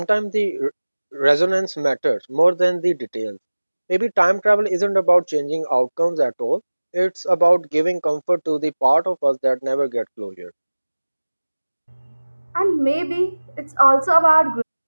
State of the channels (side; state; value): both; inverted; correlation -1.00